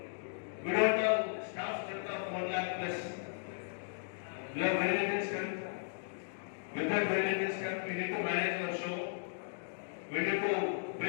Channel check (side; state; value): right; silent; digital silence